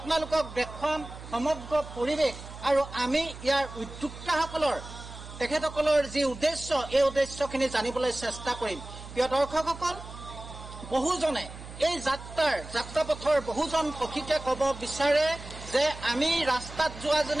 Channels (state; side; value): noise; right; hum, 13 dB below the sound